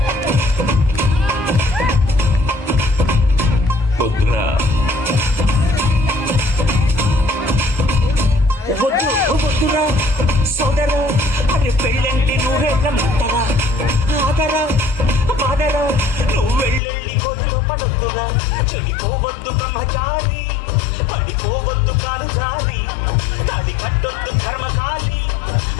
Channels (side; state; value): right; drops out; at 16.8 s